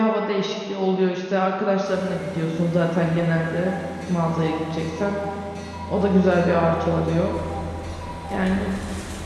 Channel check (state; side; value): identical; both; correlation 1.00